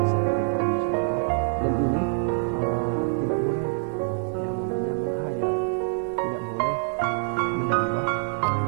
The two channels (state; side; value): silent; left; digital silence